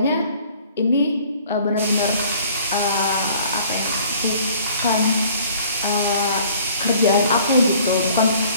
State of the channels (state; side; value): inverted; both; correlation -0.54